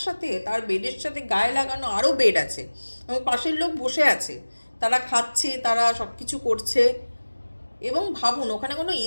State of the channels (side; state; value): both; inverted; correlation -1.00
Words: সাথে তার বেডের সাথে গায়ে লাগানো আরও বেড আছে, এবং পাশের লোক বসে আছে, তারা খাচ্ছে, তারা সব কিছু করছে। এবং ভাবুন ওখানে কোনো